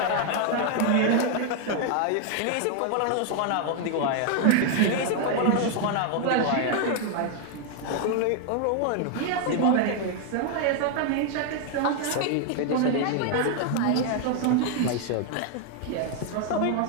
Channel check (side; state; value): both; different; correlation 0.00